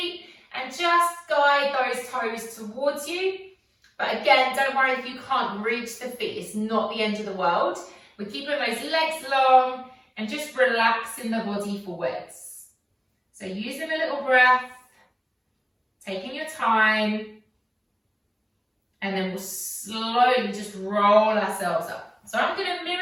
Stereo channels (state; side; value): identical; both; correlation 1.00